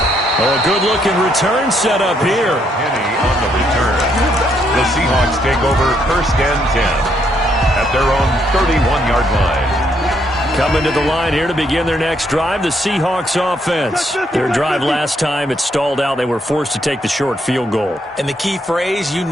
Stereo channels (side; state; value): both; normal; correlation 0.73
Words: good-looking return set up here. Penny on the return. The Seahawks take over first and 10 at their own 31-yard line. Coming to the line here to begin their next drive, the Seahawks offense. Their drive last time, it stalled out. They were forced to take the short field goal. And the key phrase, you